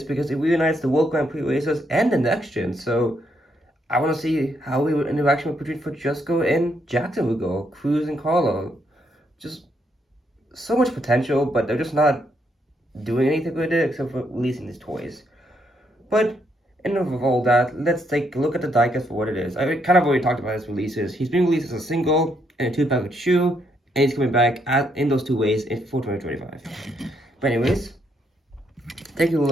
because it reunites the World Grand Prix racers and the next gen. So I want to see how we would interaction between Francesco and Jackson would go, Cruz and Carlo. Just so much potential, but they're just not doing anything with it except for releasing these toys. But enough of all that, let's take a look at the diecast for what it is. I kind of already talked about his releases. He's being released as a single and a 2-package shoe, and he's coming back in those two ways for 2025. But anyways, taking a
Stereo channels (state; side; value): normal; both; correlation 0.75